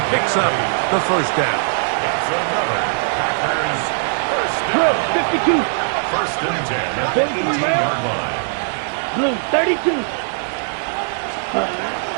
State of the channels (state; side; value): silent; left; 61 dB below the other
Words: picks up the first down. That's another Packers first down. 52. First and 10 at the 18-yard line. Blue, 32.